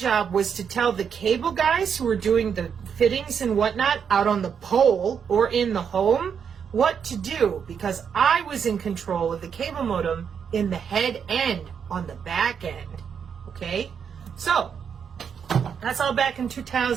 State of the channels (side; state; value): left; quieter; 7.2 dB